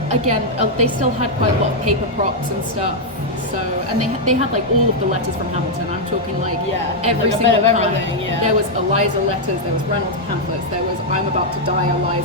But again, they still had quite a lot of paper props and stuff. So, and they had like all of the letters from Hamilton. I'm talking like every like a single bit of kind. everything, yeah. There was Eliza letters, there was Reynolds pamphlets, there was I'm about to die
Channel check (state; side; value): normal; both; correlation -0.03